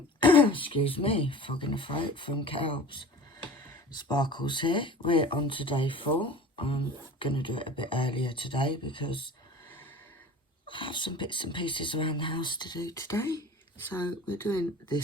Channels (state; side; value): normal; both; correlation 0.40